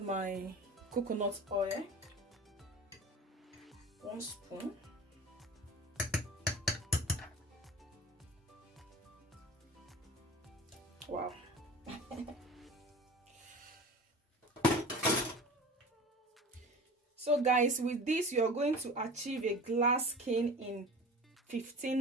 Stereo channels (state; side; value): normal; both; correlation 0.37